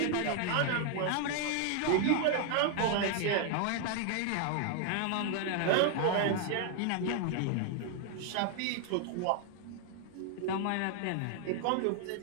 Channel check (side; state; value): both; different; correlation 0.00